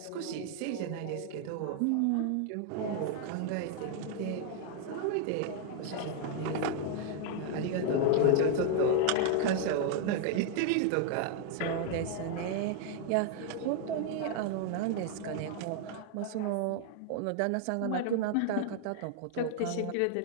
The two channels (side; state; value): both; different; correlation 0.00